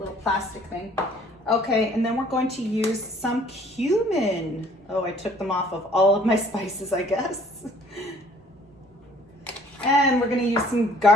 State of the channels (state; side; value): normal; both; correlation 0.57